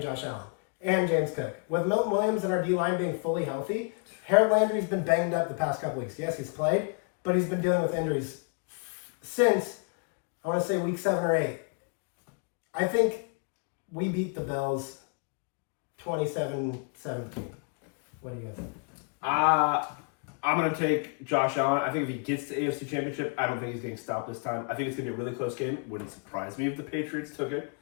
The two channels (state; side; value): quieter; right; 38.5 dB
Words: Josh Allen and James Cook. With Milton Williams and our D-line being fully healthy, Harold Landry's been banged up the past couple weeks. Yes, he's played, but he's been dealing with injuries since, I want to say, week 7 or 8. I think we beat the Bills 27-17. What do you guys think? I'm going to take Josh Allen. I think if he gets the AFC Championship, I don't think he's getting stopped this time. I think it's going to be a really close game. Wouldn't surprise me if the Patriots took it.